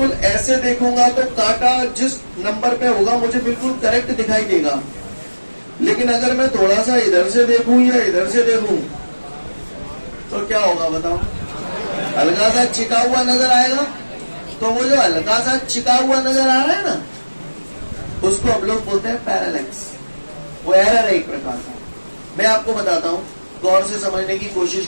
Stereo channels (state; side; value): inverted; both; correlation -1.00